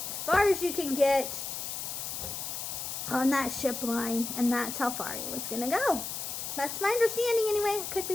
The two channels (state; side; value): noise; left; hiss, 5 dB below the sound